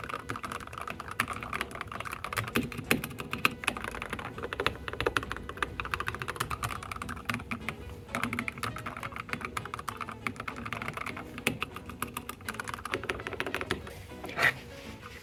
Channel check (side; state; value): both; identical; correlation 1.00